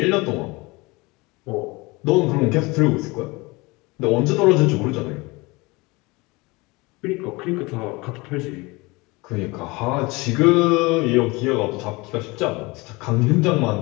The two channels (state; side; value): quieter; right; 24.3 dB